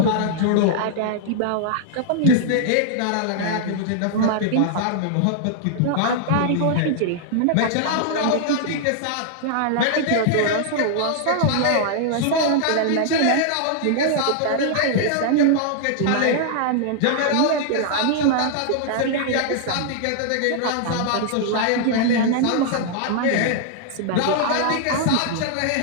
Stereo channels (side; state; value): both; different; correlation -0.01